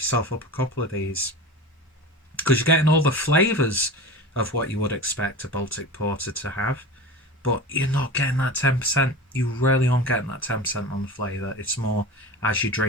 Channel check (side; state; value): both; normal; correlation 0.32